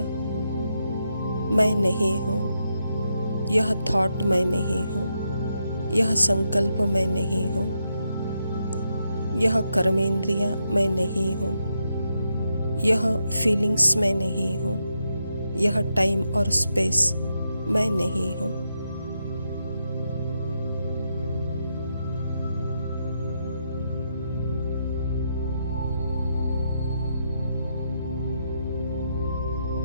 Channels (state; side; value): inverted; both; correlation -0.82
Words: मैं नहीं हूँ, यह थॉट मैं नहीं हूँ, यह संकल्प मैं नहीं हूँ, यह कर्मेंद्रियाँ मैं नहीं हूँ, यह फीलिंग्स मैं नहीं हूँ, यह टाइम और स्पेस मैं नहीं हूँ।